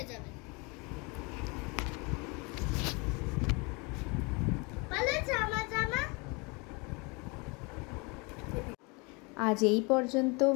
যাবে। আজ এই পর্যন্ত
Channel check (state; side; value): quieter; right; 29.2 dB